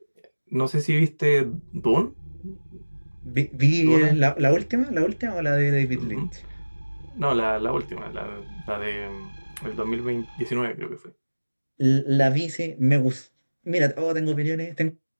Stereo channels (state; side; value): inverted; both; correlation -1.00